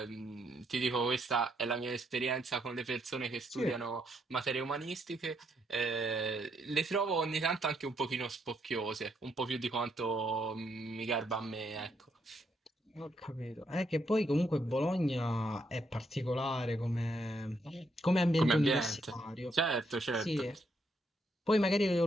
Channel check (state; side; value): normal; both; correlation 0.76